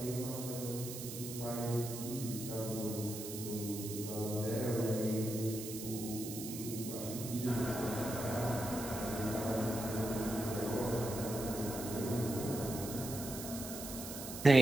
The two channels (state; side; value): noise; right; hiss, 9 dB below the sound